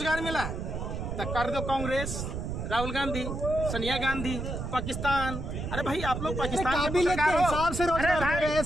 मिला? तब कर दो कांग्रेस, राहुल गांधी, सोनिया गांधी, पाकिस्तान। अरे भाई, आप लोग पाकिस्तान काबिलियत के हिसाब से रोजगार दे रहे हैं,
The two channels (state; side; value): noise; right; rumble, 5 dB below the sound